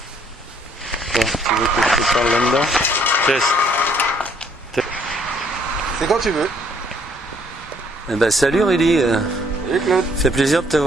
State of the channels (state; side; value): normal; both; correlation 0.65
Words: Tu veux que je te parle là-dedans? Test. C'est quand tu veux. Eh ben, salut Rudy. Salut Claude. Fait plaisir de te